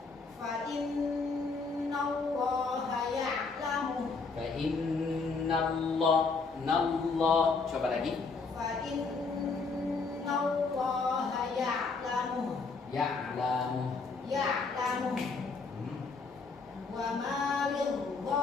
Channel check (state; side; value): quieter; right; 4.4 dB